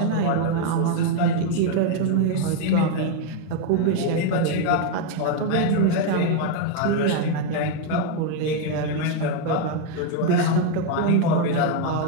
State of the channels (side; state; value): both; different; correlation 0.01